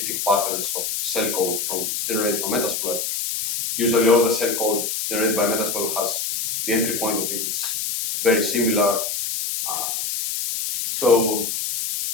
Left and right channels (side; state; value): left; noise; hiss, 2 dB below the sound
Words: patterns of cell code generated from Metasploit. Usually all the cell code generated by Metasploit has the entry point of it is very similar. So